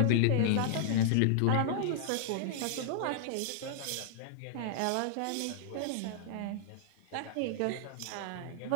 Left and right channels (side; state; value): both; different; correlation -0.01